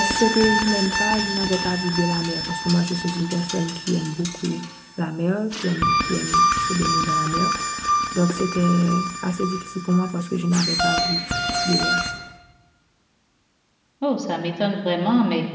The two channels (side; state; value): both; identical; correlation 1.00